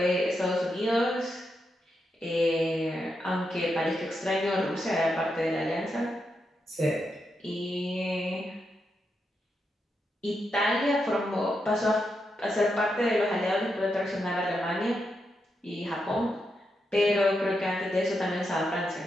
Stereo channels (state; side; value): normal; both; correlation 0.84